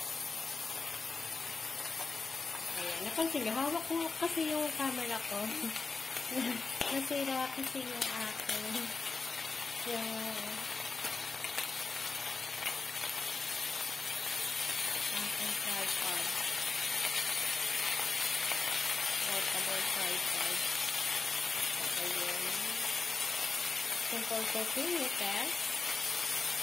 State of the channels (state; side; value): quieter; right; 4.2 dB